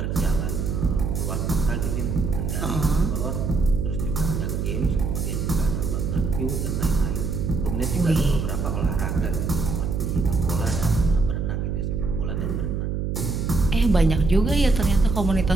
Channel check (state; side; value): noise; right; hum, 1 dB below the sound